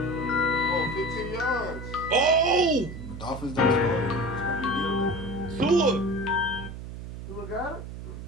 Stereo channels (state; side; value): noise; right; hum, 10 dB below the sound